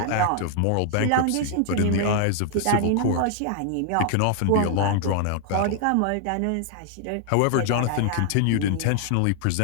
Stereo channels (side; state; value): both; different; correlation 0.00